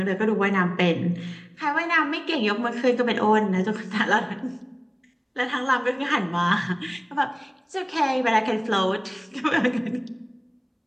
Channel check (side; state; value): both; identical; correlation 1.00